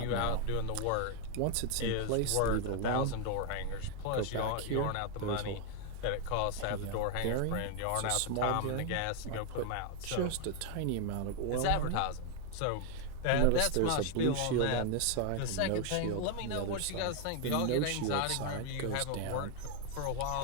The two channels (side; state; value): both; different; correlation 0.00